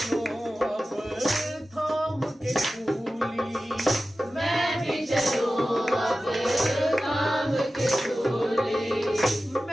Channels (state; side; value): normal; both; correlation 0.94